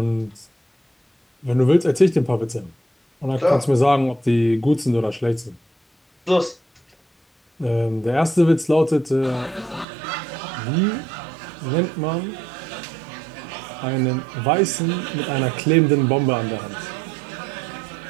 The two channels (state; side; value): drops out; left; at 9.9 s